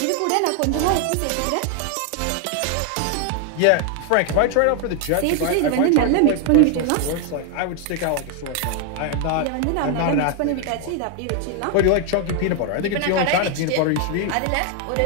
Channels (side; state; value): both; different; correlation 0.00